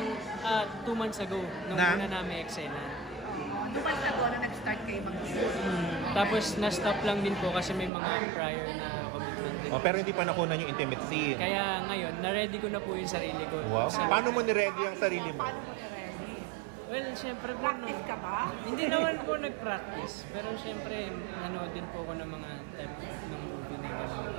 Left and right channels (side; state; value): left; drops out; at 7.9 s